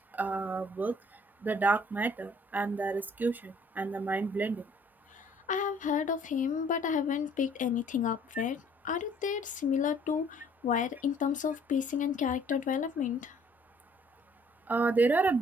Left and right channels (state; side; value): normal; both; correlation 0.59